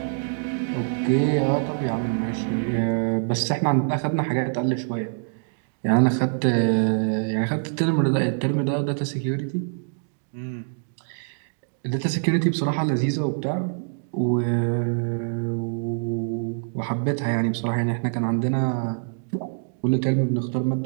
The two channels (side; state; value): left; silent; digital silence